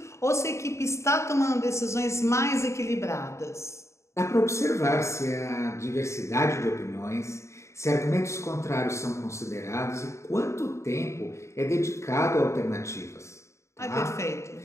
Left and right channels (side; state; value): right; late; 0.14 ms